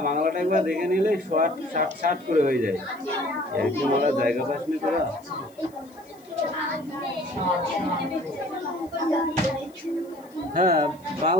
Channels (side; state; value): left; noise; hiss, 29 dB below the sound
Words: বাংলাটা একবার দেখে নিলে শর্ট শার্ট শার্ট করে হয়ে যায়। এরকম ওরা জায়গা পাস নি তোরা। হ্যাঁ,